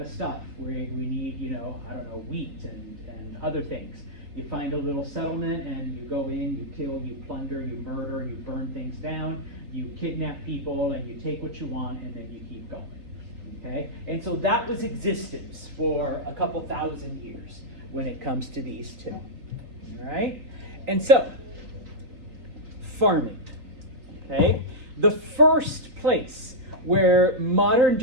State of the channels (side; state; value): left; late; 3.5 ms